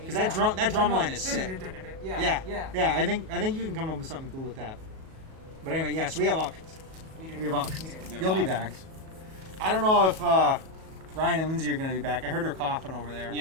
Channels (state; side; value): late; left; 37 ms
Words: that drum line is sick. Yeah. Yeah. I think you can come up with something cool with that. But anyway, yeah. So we have options. We do. We have options. We do. You'll be back. I don't know if Ryan and Lindsay are going to be back. I heard her coughing over there.